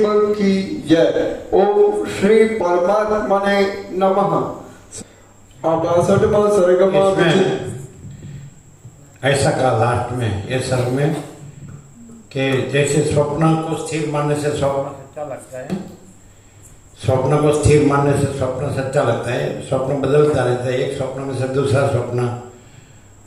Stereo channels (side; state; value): both; identical; correlation 1.00